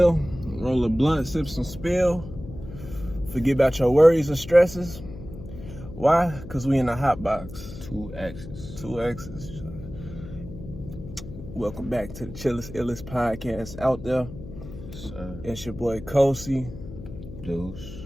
roll a blunt, sip some spill, forget about your worries and stresses. Why? Because we in the hot box. 2 X's. 2 X's. Welcome back to the Chillest Illest podcast out there. Sir. It's your boy Kosi. Deuce.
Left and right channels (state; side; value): noise; left; hum, 13 dB below the sound